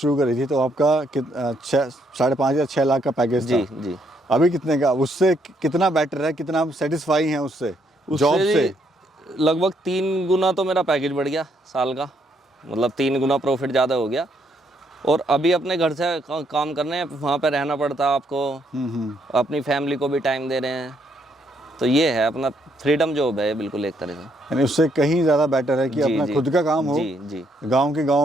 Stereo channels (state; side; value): normal; both; correlation 0.73